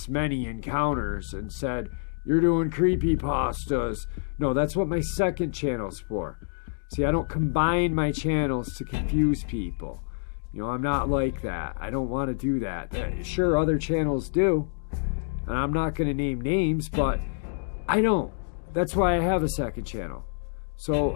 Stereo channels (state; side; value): silent; right; digital silence